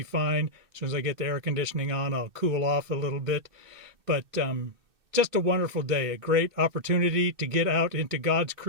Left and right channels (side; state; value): left; late; 2.6 ms